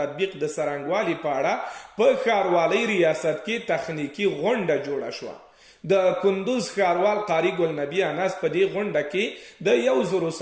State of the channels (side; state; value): both; identical; correlation 1.00